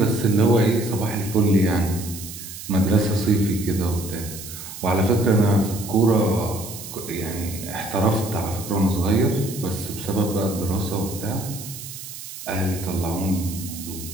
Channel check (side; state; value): right; noise; hiss, 12 dB below the sound